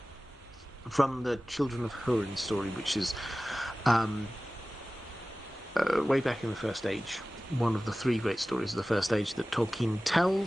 from the Children of Húrin story, which is... way back in the First Age, one of the three great stories of the First Age that Tolkien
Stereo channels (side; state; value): both; normal; correlation 0.97